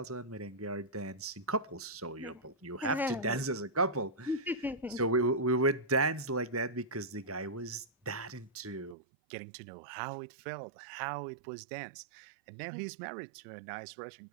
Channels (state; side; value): drops out; left; at 9.0 s